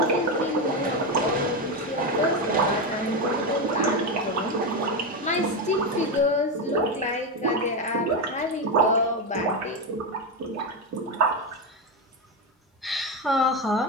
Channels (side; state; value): both; normal; correlation 0.11